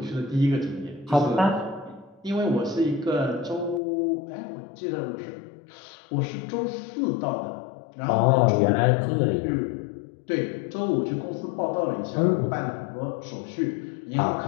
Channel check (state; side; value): drops out; right; at 3.8 s